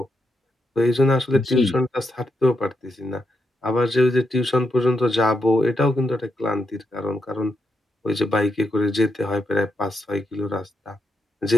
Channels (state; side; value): normal; both; correlation 0.83